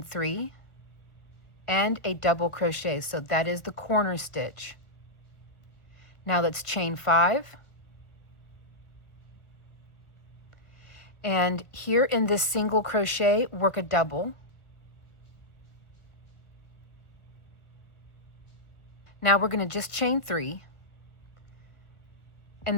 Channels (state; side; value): late; right; 1.2 ms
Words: 3 and a double crochet. So that is the corner stitch. Now let's chain 5. And here in this single crochet, work a double. Now we're going to just chain 3.